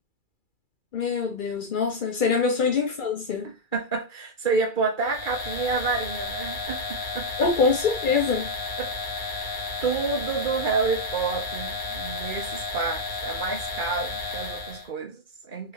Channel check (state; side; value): late; right; 2.3 ms